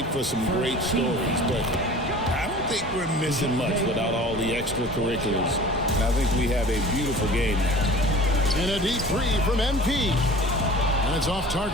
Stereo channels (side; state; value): both; normal; correlation 0.42